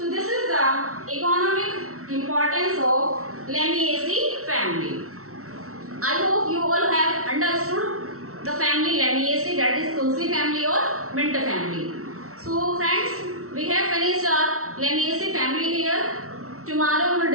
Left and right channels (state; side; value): late; left; 0.63 ms